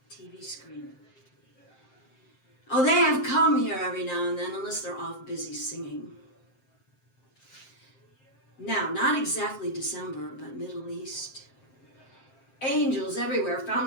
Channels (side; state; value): right; late; 7.6 ms